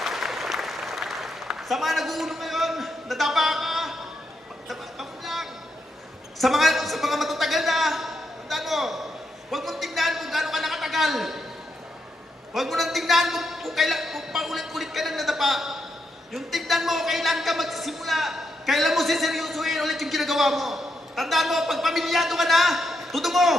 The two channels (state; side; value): normal; both; correlation 0.82